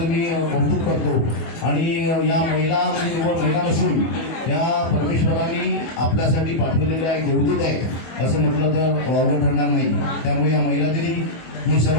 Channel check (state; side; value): late; right; 25 ms